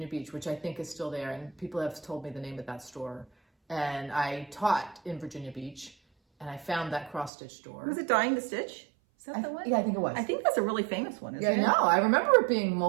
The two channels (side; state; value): left; drops out; at 7.3 s